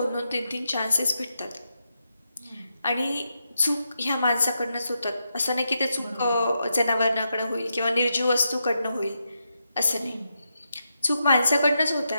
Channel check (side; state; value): both; inverted; correlation -0.85